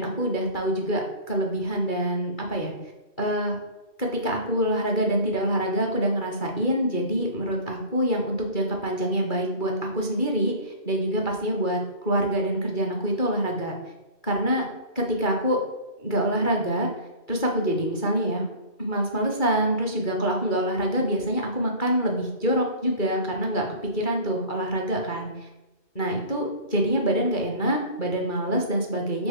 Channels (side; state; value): right; late; 2.3 ms